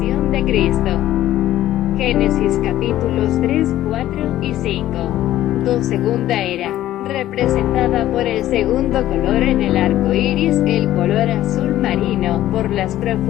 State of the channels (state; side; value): quieter; right; 13.7 dB